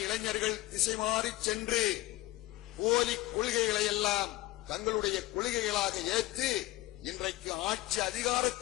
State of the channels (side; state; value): right; quieter; 17.5 dB